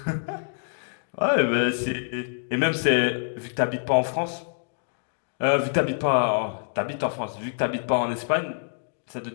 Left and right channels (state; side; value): silent; right; digital silence